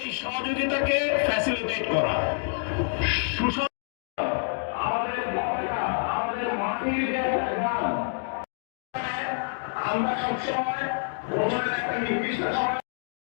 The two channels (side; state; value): right; silent; digital silence